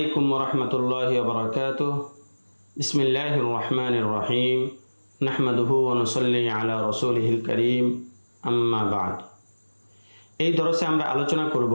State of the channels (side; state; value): both; inverted; correlation -1.00